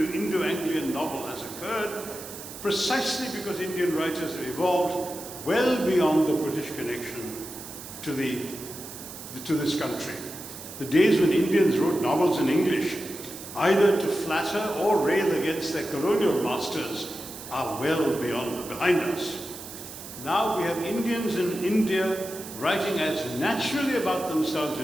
novel, has occurred precisely because Indian writers have evolved well beyond the British connection to this country. The days when Indians wrote novels in English, either to flatter or rail against their colonial masters, are well behind us. Now we have Indians in India writing as naturally about themselves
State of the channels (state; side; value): noise; right; hiss, 13 dB below the sound